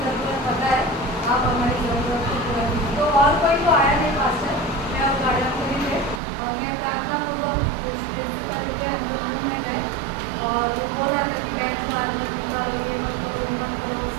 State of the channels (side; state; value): left; drops out; at 6.2 s